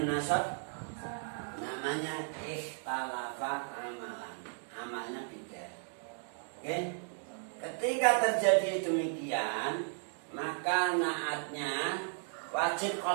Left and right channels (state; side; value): silent; left; 54 dB below the other